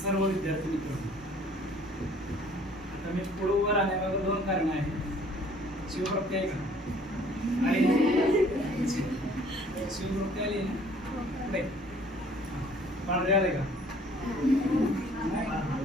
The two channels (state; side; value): normal; both; correlation 0.56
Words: विद्यार्थी मित्र. आता मी पुढे उभं राहण्यामागे दोन कारण आहेत. शिवप्राप्ती आहे का? आहे. शिवप्राप्ती आली ना? नाही. पांढरे आले का?